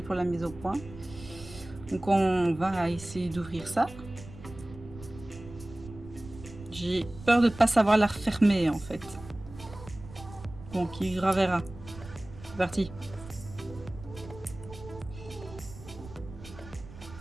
pour la mise au point. Donc on va essayer d'ouvrir ça. J'ai peur de ne pas savoir la refermer en fait. Bon, qui vivra verra. C'est parti.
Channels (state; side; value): noise; right; rumble, 16 dB below the sound